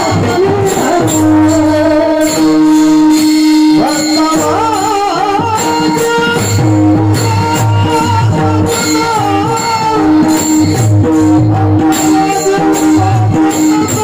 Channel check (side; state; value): both; identical; correlation 1.00